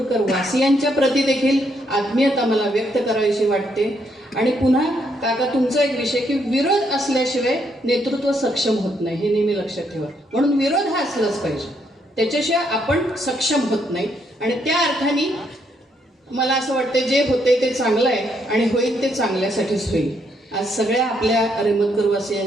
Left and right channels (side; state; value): both; normal; correlation 0.74